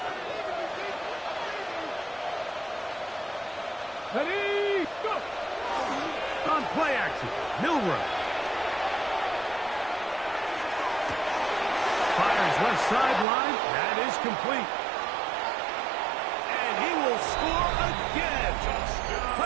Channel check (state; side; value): drops out; left; at 13.2 s